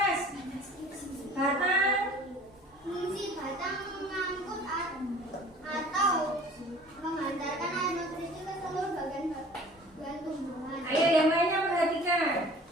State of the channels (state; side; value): normal; both; correlation 0.47